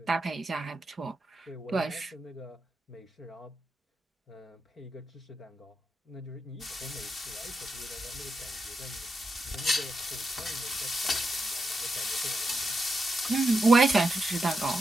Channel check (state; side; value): normal; both; correlation 0.85